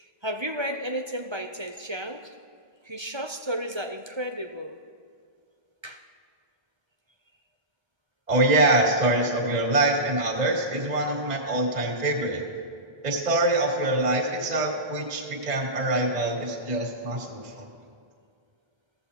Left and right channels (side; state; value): left; late; 1.3 ms